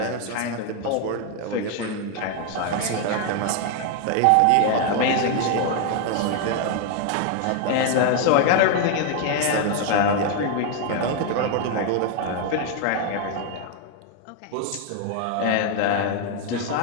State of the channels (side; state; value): both; different; correlation 0.01